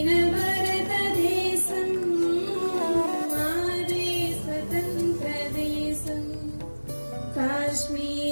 భారతదేశం మాదే స్వతంత్ర దేశం.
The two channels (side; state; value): both; inverted; correlation -1.00